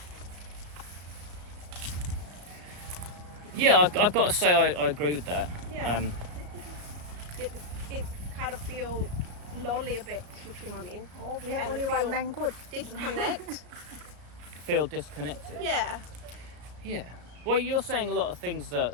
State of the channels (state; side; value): late; left; 34 ms